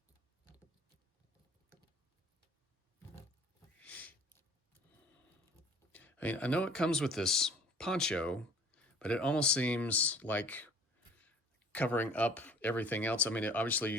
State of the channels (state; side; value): normal; both; correlation 0.50